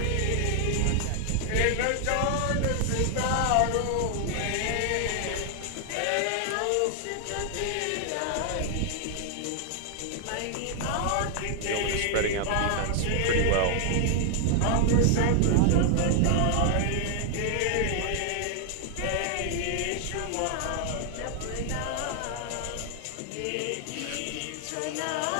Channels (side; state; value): both; different; correlation 0.00